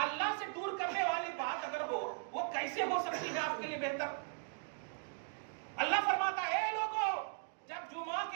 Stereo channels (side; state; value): left; silent; digital silence